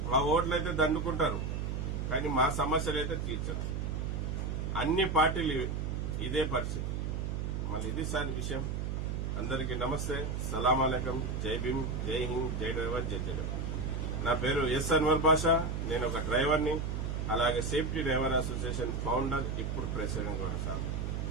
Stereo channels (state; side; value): noise; right; hum, 2 dB below the sound